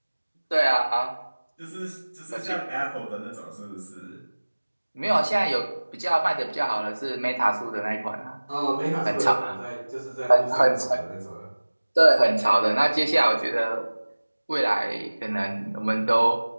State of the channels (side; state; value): both; inverted; correlation -1.00